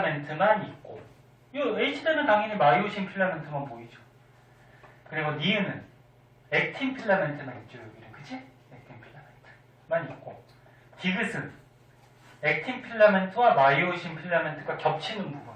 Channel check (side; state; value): both; identical; correlation 1.00